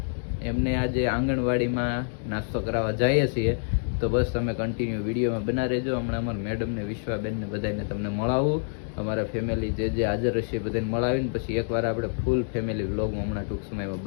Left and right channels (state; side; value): silent; right; 60 dB below the other